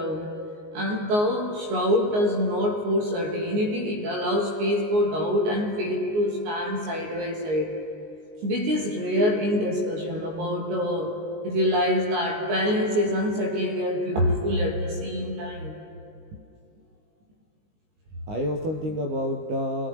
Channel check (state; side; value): late; left; 19 ms